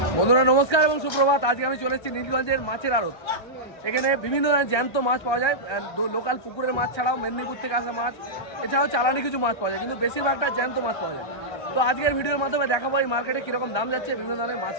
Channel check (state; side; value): late; right; 1.3 ms